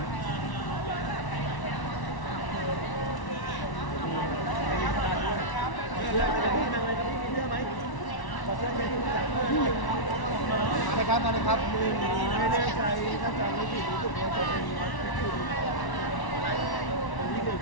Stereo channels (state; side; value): late; right; 1.1 ms